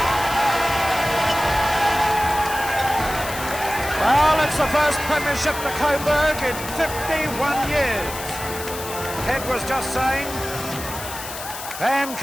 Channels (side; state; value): left; noise; hiss, 10 dB below the sound